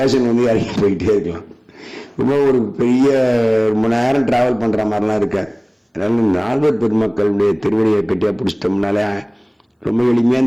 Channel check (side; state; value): both; identical; correlation 1.00